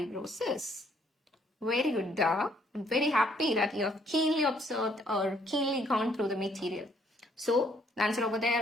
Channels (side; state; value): both; normal; correlation 0.66